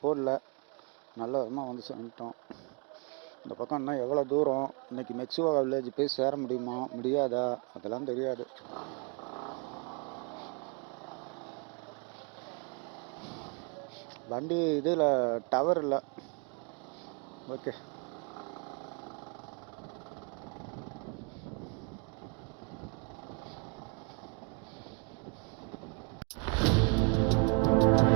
போடல, நல்ல விதமாக வந்து வந்துட்டோம். இந்த பக்கம் இன்னும் எவ்வளோ தூரம், இன்னைக்கு மெக்சிகோ வில்லேஜ் போய் சேர முடியுமா முடியாதா அதெல்லாம் தெரியாது. வண்டி இதில் டவர் இல்லை. ஓகே,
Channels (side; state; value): left; quieter; 34.6 dB